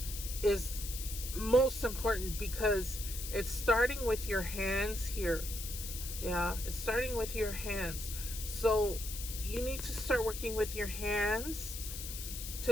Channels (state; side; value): noise; left; hiss, 8 dB below the sound